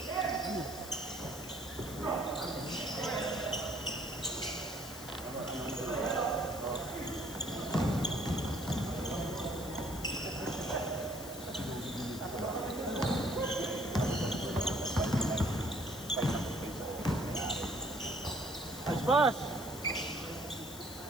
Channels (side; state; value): left; noise; hiss, 13 dB below the sound